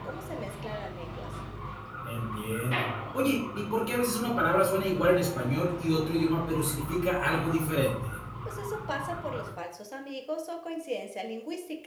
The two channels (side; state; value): both; identical; correlation 1.00